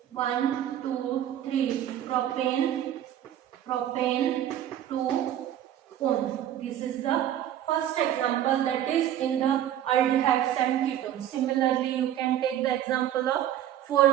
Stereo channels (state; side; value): quieter; left; 11.3 dB